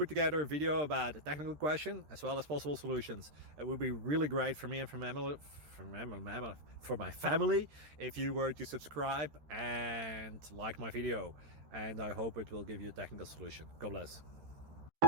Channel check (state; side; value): late; left; 13 ms